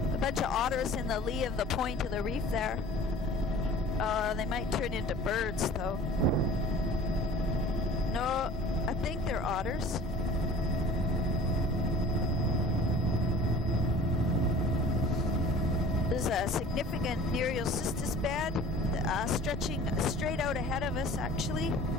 of the point of the reef there. They might turn into birds though. No, I think they're otters. There's a significant Nereocystis bed stretching straight out ahead of us, actually.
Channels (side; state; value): both; normal; correlation 0.45